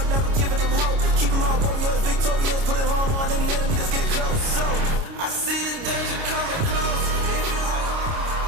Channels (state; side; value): late; left; 29 ms